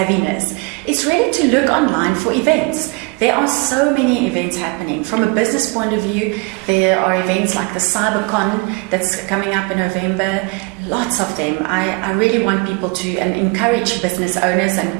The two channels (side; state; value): left; quieter; 27.9 dB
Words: is really to look online for events. There are so many events happening. From a business point of view, there are events like the CyberCon that's coming up in November, lots of them. I really want people to encourage business owners